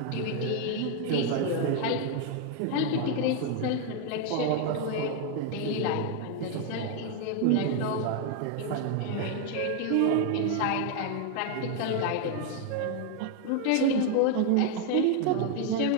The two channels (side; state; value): both; different; correlation 0.01